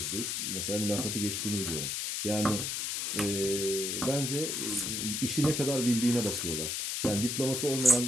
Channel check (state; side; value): noise; left; hiss, 1 dB below the sound